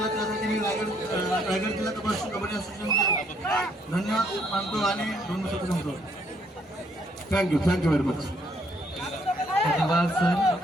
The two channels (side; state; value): both; normal; correlation 0.68